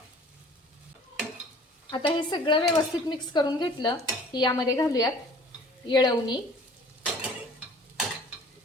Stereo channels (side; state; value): both; normal; correlation 0.49